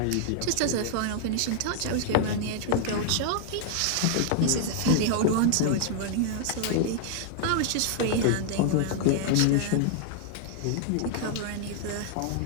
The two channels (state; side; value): different; both; correlation 0.00